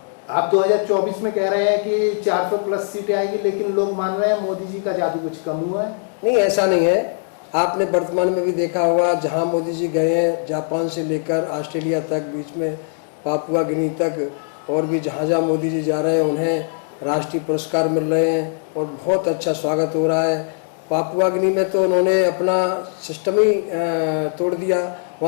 आप 2024 में कह रहे हैं कि 400 प्लस सीटें आएंगी, लेकिन लोग मान रहे हैं मोदी जी का जादू कुछ कम हुआ है। नहीं, ऐसा नहीं है। आपने वर्तमान में भी देखा होगा, जहां मोदी जी गए हैं, जापान से लेकर ऑस्ट्रेलिया तक, बीच में पापुआ गिनी तक, और भी जहाँ मोदी जी जा रहे हैं उन्हें राष्ट्रीय पुरस्कार मिल रहे हैं और बहुत अच्छा स्वागत हो रहा है। पापुआ गिनी में तो उन्होंने अपना सिस्टम ही तोड़ दिया।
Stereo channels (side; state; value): right; silent; digital silence